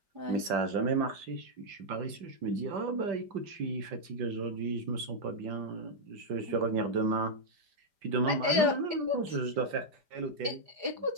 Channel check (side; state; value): left; late; 5.0 ms